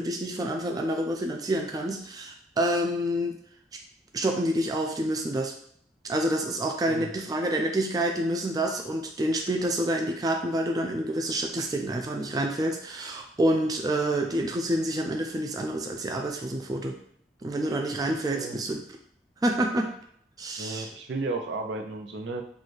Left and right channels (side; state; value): both; normal; correlation 0.64